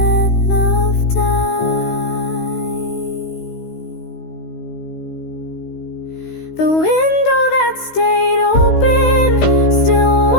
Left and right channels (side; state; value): right; late; 16 ms